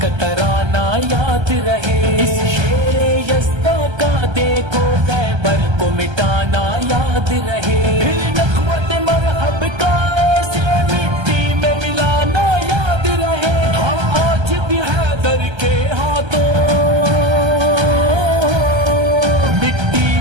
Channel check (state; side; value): late; left; 1.3 ms